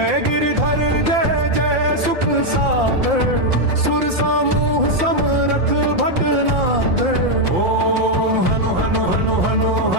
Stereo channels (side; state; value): left; late; 5.8 ms